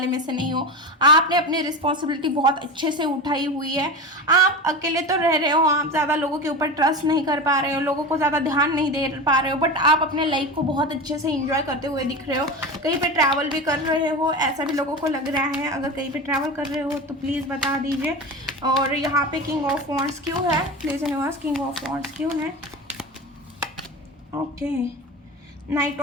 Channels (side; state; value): both; normal; correlation 0.26